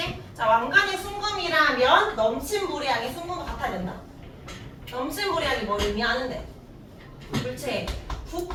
자, 왕관이 순금이라면 넘친 물량이 순금과 같아야 된다. 넘친 물량이 뭘 의미하는데? 물체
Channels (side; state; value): both; identical; correlation 1.00